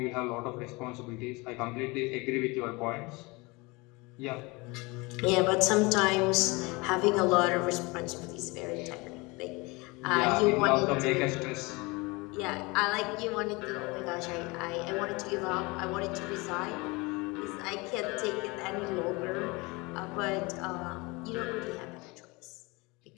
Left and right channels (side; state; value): right; quieter; 25.4 dB